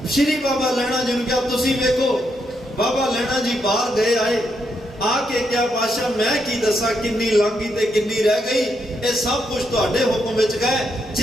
ਸ਼੍ਰੀ ਬਾਬਾ ਲਹਿਣਾ ਜੀ ਨੂੰ ਕਿਹਾ ਤੁਸੀਂ ਵੇਖੋ। ਬਾਬਾ ਲਹਿਣਾ ਜੀ ਬਾਹਰ ਗਏ ਆਏ, ਆ ਕੇ ਕਿਹਾ ਪਾਸ਼ਾ ਮੈਂ ਕੀ ਦੱਸਾਂ ਕਿੰਨੀ ਲੰਘੀ ਤੇ ਕਿੰਨੀ ਰਹਿ ਗਈ, ਇਹ ਸਭ ਕੁਝ ਤੁਹਾਡੇ ਹੁਕਮ ਵਿੱਚ ਗਏ।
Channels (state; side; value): normal; both; correlation 0.79